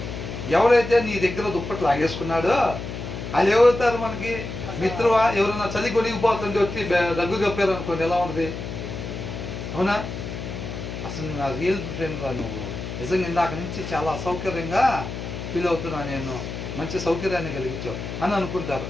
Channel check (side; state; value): left; noise; hum, 7 dB below the sound